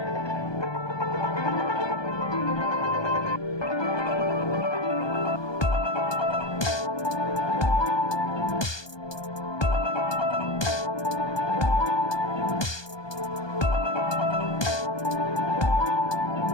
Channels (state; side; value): late; right; 1.2 ms